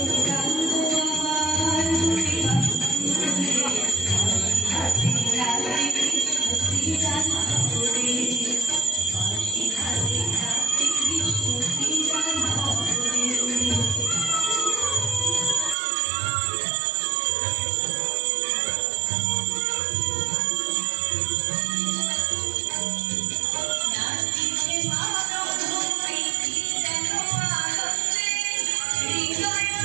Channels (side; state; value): left; drops out; at 15.8 s